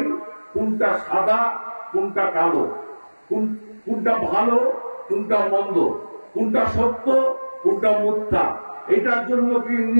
কোনটা সাদা কোনটা কালো, কোনটা ভালো কোনটা মন্দ, কোনটা সত্য কোনটা মিথ্যা। এটার জন্য কি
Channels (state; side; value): inverted; both; correlation -1.00